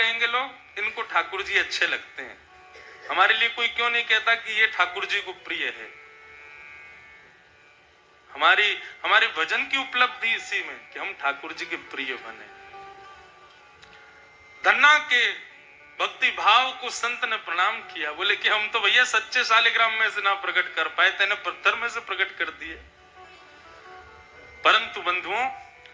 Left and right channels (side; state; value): both; identical; correlation 1.00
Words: लोग? इनको ठाकुर जी अच्छे लगते हैं। हमारे लिए कोई क्यों नहीं कहता कि ये ठाकुर जी को प्रिय है? हमारे भजन की उपलब्धि इसी में कि हम ठाकुर जी के प्रिय बने। धन्ना के भक्ति भाव को संत ने प्रणाम किया, बोले कि हम तो भैया सच्चे शालिग्राम में से ना प्रकट कर पाए, तेने पत्थर में से प्रकट कर दिए। परंतु बंधुओं,